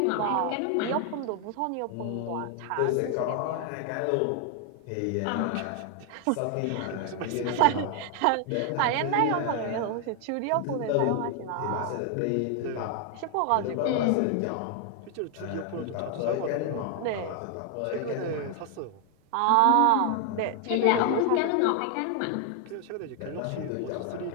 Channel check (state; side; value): different; both; correlation 0.00